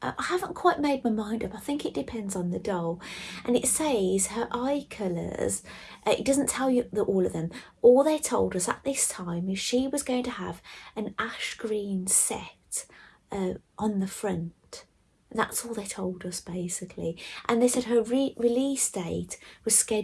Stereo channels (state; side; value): identical; both; correlation 1.00